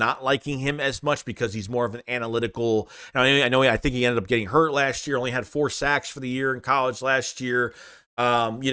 liking him as much because he's more of an analytical. I think he ended up getting hurt last year, only had 4 sacks for the year in college last year.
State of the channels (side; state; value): both; identical; correlation 1.00